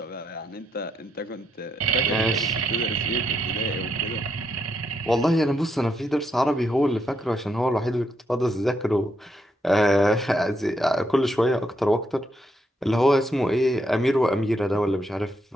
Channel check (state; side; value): normal; both; correlation 0.78